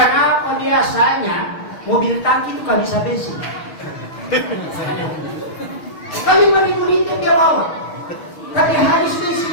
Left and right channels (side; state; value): right; late; 6.5 ms